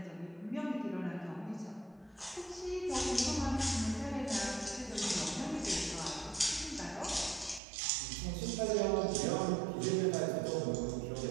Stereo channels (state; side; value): drops out; left; at 7.6 s